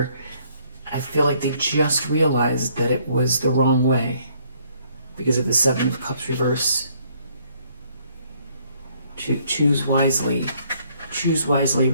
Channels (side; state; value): both; inverted; correlation -0.66